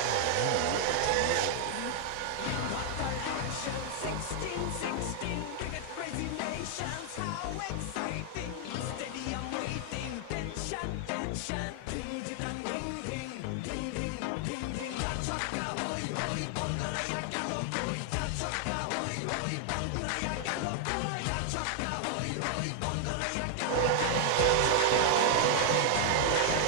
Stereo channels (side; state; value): both; different; correlation 0.00